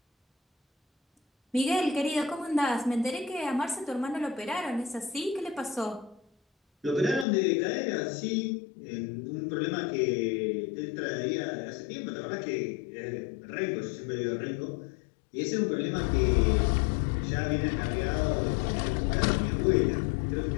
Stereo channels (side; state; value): right; drops out; at 7.2 s